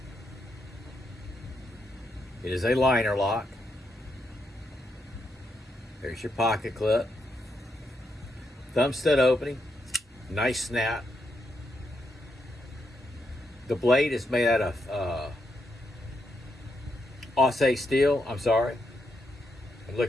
It is a LinerLock. There's your pocket clip. Thumb stud opening. Nice snap. The blade is made out of AUS steel. I'm sorry. I'm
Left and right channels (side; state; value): both; normal; correlation 0.81